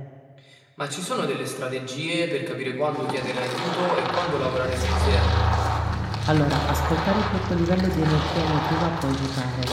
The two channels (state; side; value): identical; both; correlation 1.00